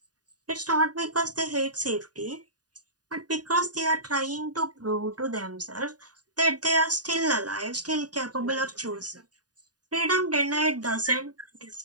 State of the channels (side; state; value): left; late; 0.68 ms